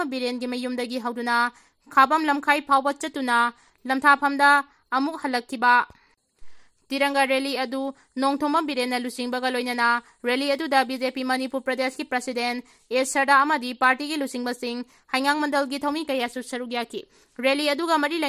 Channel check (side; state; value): both; identical; correlation 1.00